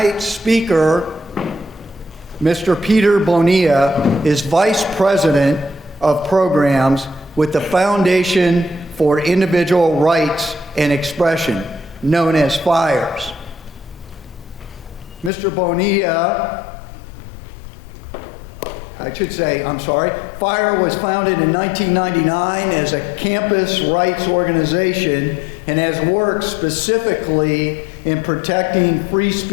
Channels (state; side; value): drops out; right; at 15.3 s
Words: speaker, Mr. Peter Bonilla, is Vice President of Programs with the Foundation for Individual Rights and Expression, known as FIRES. Mr. Bonilla, FIRE was founded in 1999 as a campus rights organization and has worked specifically in protecting free